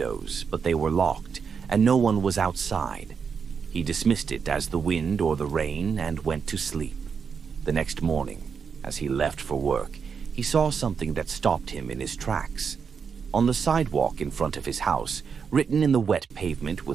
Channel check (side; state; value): left; quieter; 6.2 dB